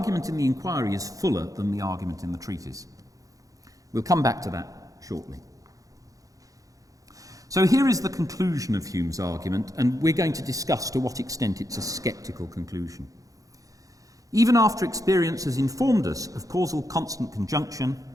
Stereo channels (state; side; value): late; left; 0.17 ms